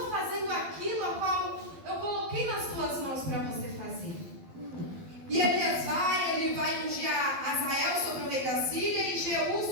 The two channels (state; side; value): late; left; 12 ms